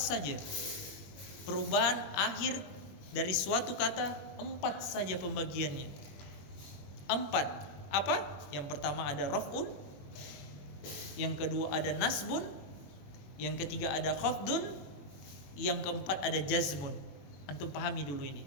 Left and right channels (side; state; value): right; late; 21 ms